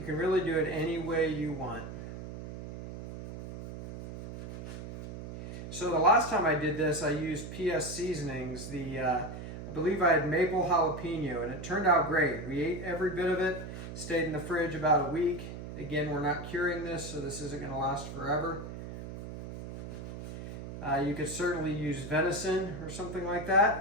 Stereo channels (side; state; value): right; noise; hum, 9 dB below the sound